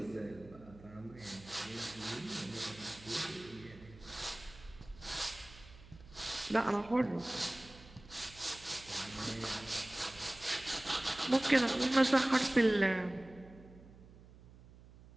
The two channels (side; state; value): right; noise; hum, 20 dB below the sound